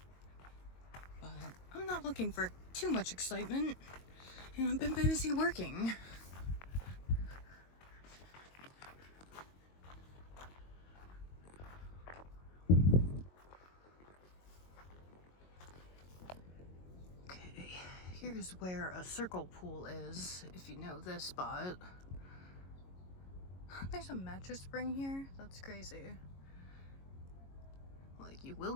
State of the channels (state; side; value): late; right; 22 ms